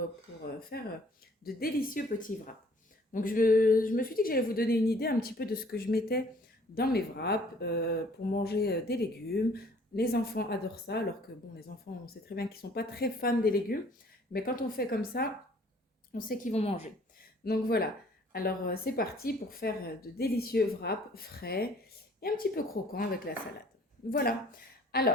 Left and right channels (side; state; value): both; normal; correlation 0.57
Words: faire de délicieux petits wraps. Donc je me suis dit que j'allais vous donner une idée un petit peu de ce que je mettais dans mes wraps pour manger des légumes. Les enfants adorent ça, alors que bon, les enfants, on sait très bien qu'ils sont pas très fans des légumes. Mais quand on fait comme ça, on sait qu'ils vont manger. Donc voilà, alors c'est parti pour faire de délicieux wraps frais et un petit peu croquants avec la salade. Voilà,